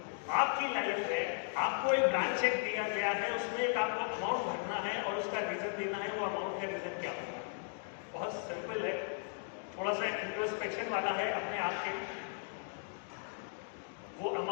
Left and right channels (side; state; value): right; silent; 53 dB below the other